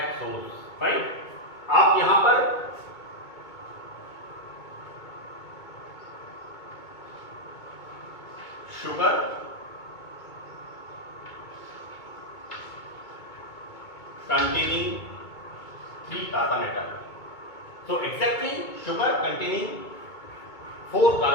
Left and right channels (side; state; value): right; late; 2.2 ms